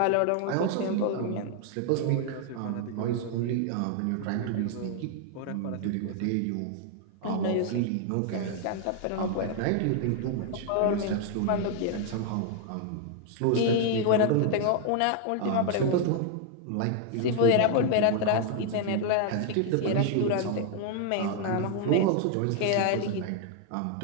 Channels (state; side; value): different; both; correlation 0.00